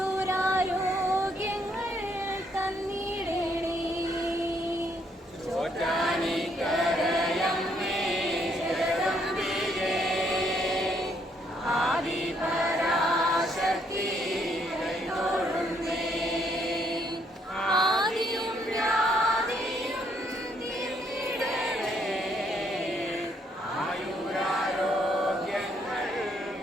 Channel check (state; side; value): normal; both; correlation 0.71